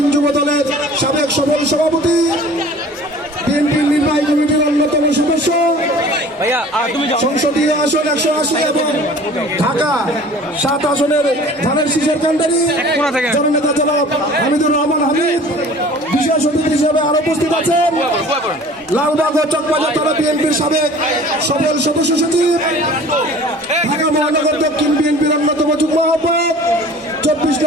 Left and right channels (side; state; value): both; normal; correlation 0.46